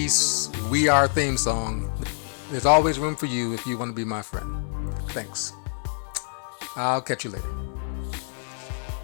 We Are theme song, there's always room for you if you want to be my friend. Thanks. I'll catch you later.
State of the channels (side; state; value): right; silent; digital silence